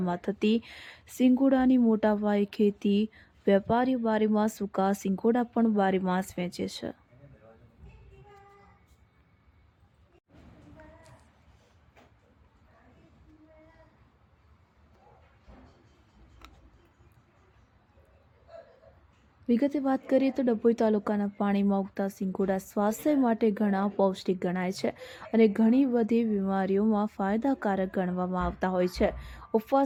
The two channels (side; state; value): both; identical; correlation 1.00